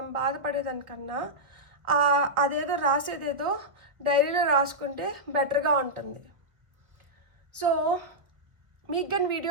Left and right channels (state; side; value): late; left; 1.8 ms